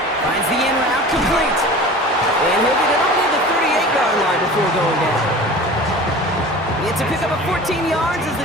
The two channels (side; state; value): both; normal; correlation 0.38